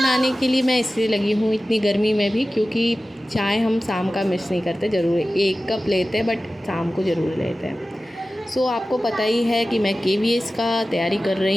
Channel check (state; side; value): normal; both; correlation 0.95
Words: के लिए मैं इसलिए लगी हूँ इतनी गर्मी में भी, क्योंकि चाय हम शाम का मिस नहीं करते, ज़रूर 1 कप लेते हैं बट शाम को ज़रूर लेते हैं। आपको पता ही है कि मैं केवीएस का तैयारी कर